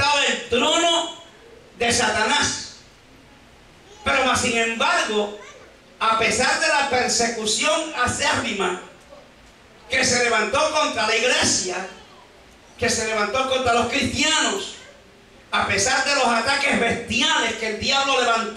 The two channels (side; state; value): both; identical; correlation 1.00